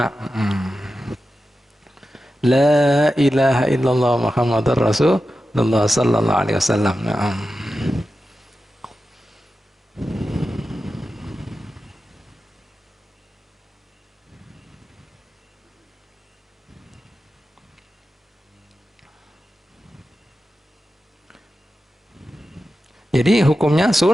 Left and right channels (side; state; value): both; normal; correlation 0.92